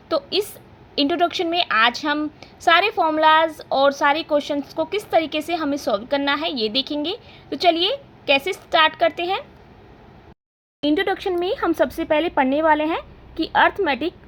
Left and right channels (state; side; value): identical; both; correlation 1.00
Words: तो इस इंट्रोडक्शन में आज हम सारे फॉर्मूलाज और सारे क्वेश्चंस को किस तरीके से हमें सॉल्व करना है ये देखेंगे। तो चलिए कैसे स्टार्ट करते हैं। इंट्रोडक्शन में हम सबसे पहले पढ़ने वाले हैं कि अर्थमेटिक